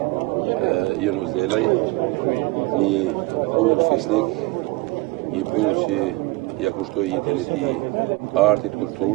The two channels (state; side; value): quieter; left; 21.6 dB